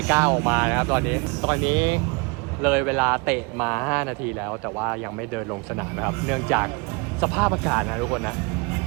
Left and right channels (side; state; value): left; quieter; 29.2 dB